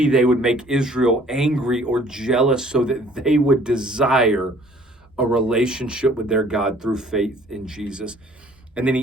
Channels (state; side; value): normal; both; correlation 0.56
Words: they would make Israel angry or jealous so that they would desire a relationship with their God through faith in Jesus. And then